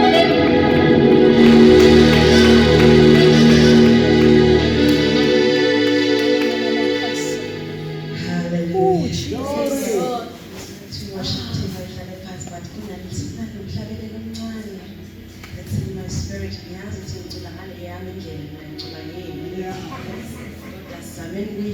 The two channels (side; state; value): both; identical; correlation 1.00